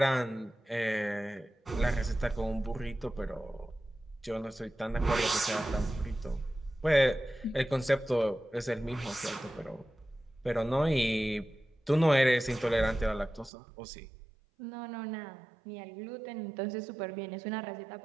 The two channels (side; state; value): left; drops out; at 13.5 s